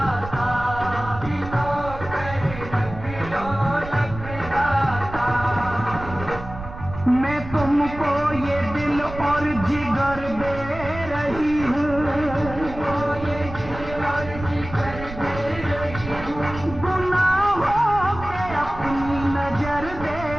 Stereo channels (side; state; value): right; noise; rumble, 11 dB below the sound